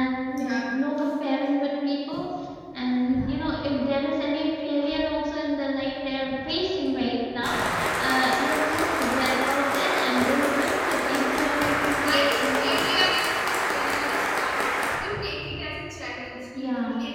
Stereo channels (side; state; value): both; identical; correlation 1.00